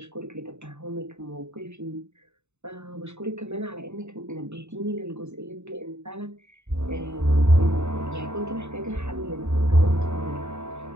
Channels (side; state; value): left; late; 0.82 ms